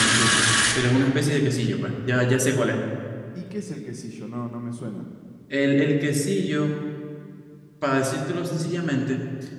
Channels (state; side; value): identical; both; correlation 1.00